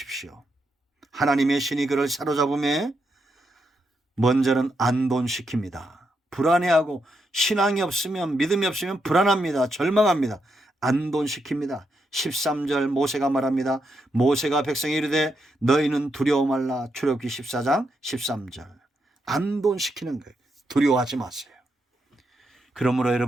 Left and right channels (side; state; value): both; normal; correlation 0.82